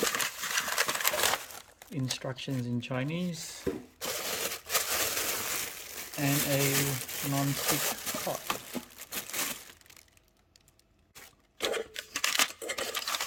Instructions in Chinese. And a non-stick pot.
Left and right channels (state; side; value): identical; both; correlation 1.00